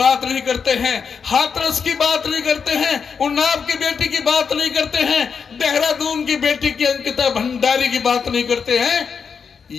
नहीं करते हैं, हाथरस की बात नहीं करते हैं, उन्नाव की बेटी की बात नहीं करते हैं, देहरादून की बेटी की अंकिता भंडारी की बात नहीं करते हैं।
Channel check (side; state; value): right; quieter; 6.2 dB